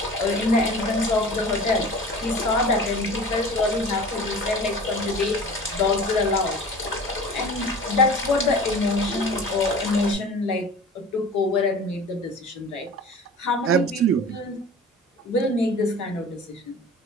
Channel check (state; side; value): normal; both; correlation 0.40